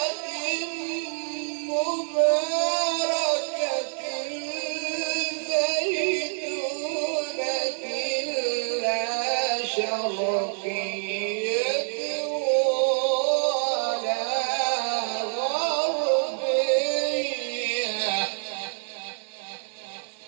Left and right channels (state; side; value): silent; left; 59 dB below the other